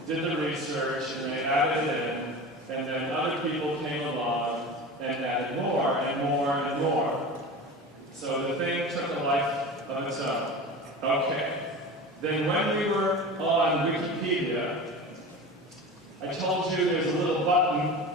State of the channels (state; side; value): normal; both; correlation 0.32